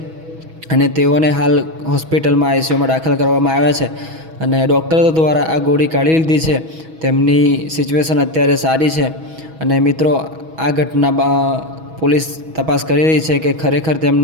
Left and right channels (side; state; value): left; late; 6.2 ms